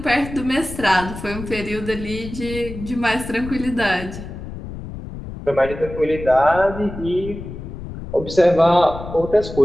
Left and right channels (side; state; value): left; noise; rumble, 11 dB below the sound